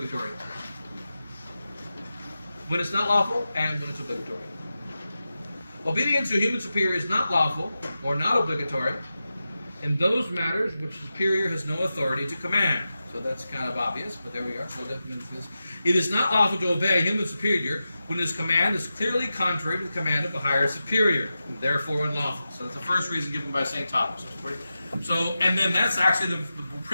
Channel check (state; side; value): inverted; both; correlation -0.92